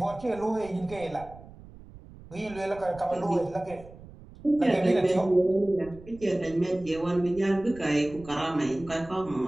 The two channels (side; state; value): right; noise; rumble, 19 dB below the sound